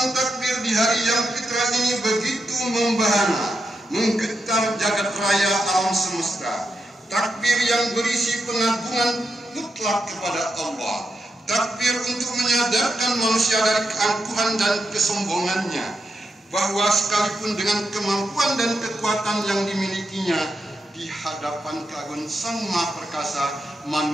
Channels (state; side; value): normal; both; correlation 0.85